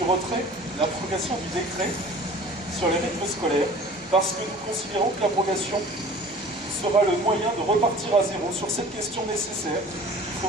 décret sur les rythmes scolaires, parce que nous considérons que l'abrogation sera le moyen de repartir à zéro sur cette question nécessaire qu'il faut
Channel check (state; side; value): normal; both; correlation 0.45